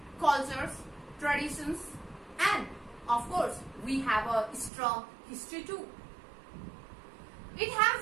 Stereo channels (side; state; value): left; drops out; at 4.7 s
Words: cultures, traditions, and of course, we have a strong history too. It